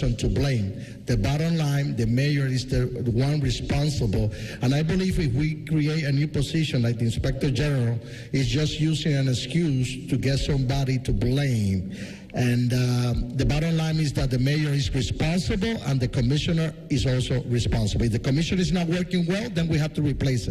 to blame. The bottom line, the mayor is the one responsible, and I believe if we create a new position like the inspector general, is just using an excuse to get somebody to blame. And the bottom line is that the mayor is responsible and the commissioner is also responsible. If the commissioner is not working well, then we have to replace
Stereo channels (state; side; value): identical; both; correlation 1.00